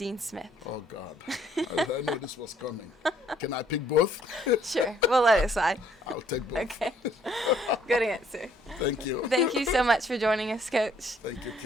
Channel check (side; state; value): both; normal; correlation 0.64